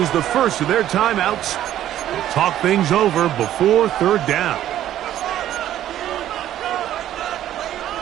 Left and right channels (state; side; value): quieter; left; 12.2 dB